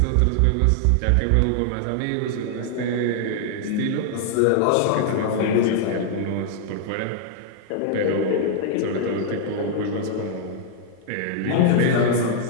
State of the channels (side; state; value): both; different; correlation -0.01